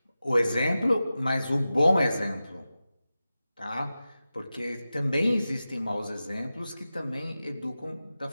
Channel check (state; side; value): inverted; both; correlation -0.94